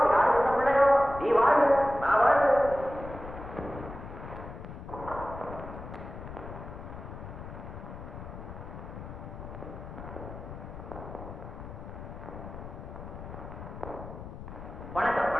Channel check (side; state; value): left; noise; rumble, 11 dB below the sound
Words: யாரு கிட்ட பிள்ளையோ, நீ வாழ்வு நான் வாழ்வு. வணக்கம்